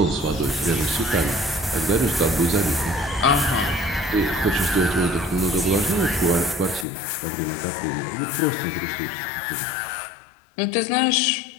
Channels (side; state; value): right; drops out; at 6.9 s